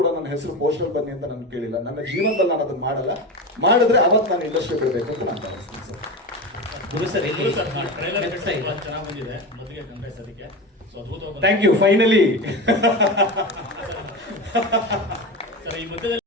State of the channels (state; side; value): normal; both; correlation 0.23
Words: ನನ್ನ ಹೆಸರು ಪೋಸ್ಟರ್ ಬನ್ನಿ ಅಂತ ನಾನು ಕೇಳಿಲ್ಲ. ನನ್ನ ಜೀವನದಲ್ಲಿ ನಾನು ಅದನ್ನ ಮಾಡಲ್ಲ. ಮಾಡಿದ್ರೆ ಅವತ್ತು ನಾನು ಇಂಡಸ್ಟ್ರಿ ಬಿಡಬೇಕು ಅಂತ ನಾನು ಭಾವಿಸ್ತೀನಿ ಸರ್. ಚೆನ್ನಾಗಿ ಬಂದಿದೆ. ಮೊದಲಿಗೆ ಕಂಗ್ರೆಸ್ ಅದಕ್ಕೆ ಥ್ಯಾಂಕ್ ಯು. ಫೈನಲಿ ಸರ್, ಈ